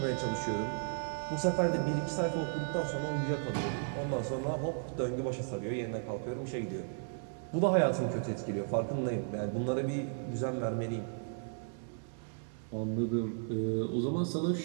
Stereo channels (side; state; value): left; silent; 55 dB below the other